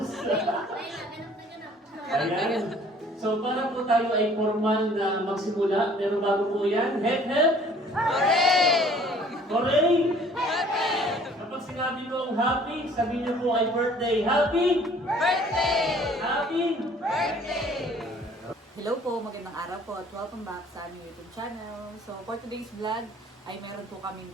Ayan. So para po tayo ay formal na magsimula, pero bago po yan, hep hep! Hooray! Hooray! Kapag sinabi ko ang happy, sabihin niyo po ay birthday. Happy! Birthday! Happy! Hello po, magandang araw po at welcome back sa aming YouTube channel. So, for today's vlog ay meron po kaming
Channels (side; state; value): both; normal; correlation 0.54